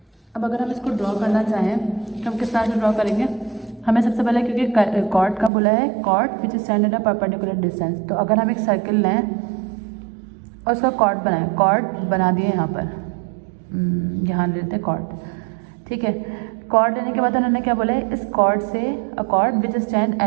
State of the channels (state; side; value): drops out; left; at 5.5 s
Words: अब अगर हम इसको ड्रॉ करना चाहें तो हम किस तरह से ड्रॉ करेंगे. हमें सबसे पहले, क्योंकि कॉर्ड का बोला है, chord which stand at a perpendicular distance, तो अगर हम एक सर्किल लें और उसका कॉर्ड बनाएं, कॉर्ड बना दिए यहाँ पर, यहाँ लेते हैं कॉर्ड, ठीक है. कॉर्ड लेने के बाद उन्होंने क्या बोला है, इस कॉर्ड से अ cord which stand